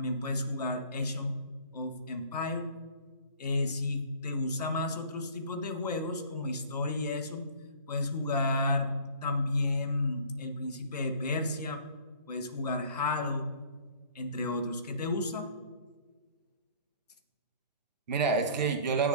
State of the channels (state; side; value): inverted; both; correlation -0.50